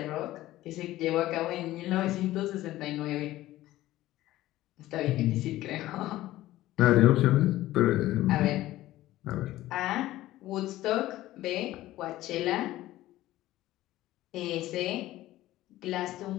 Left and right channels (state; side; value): quieter; right; 15.7 dB